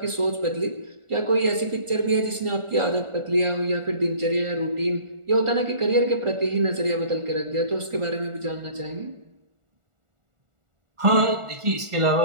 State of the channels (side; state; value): left; late; 1.4 ms